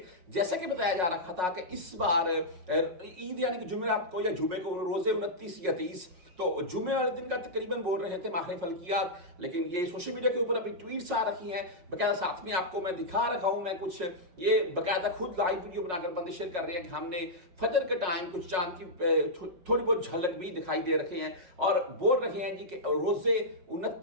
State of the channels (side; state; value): left; late; 5.5 ms